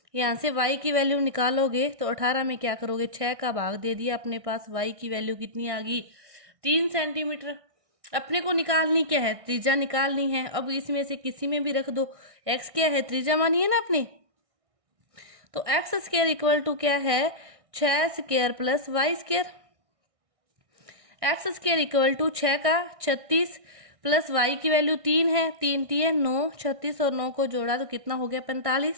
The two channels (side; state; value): left; late; 1.6 ms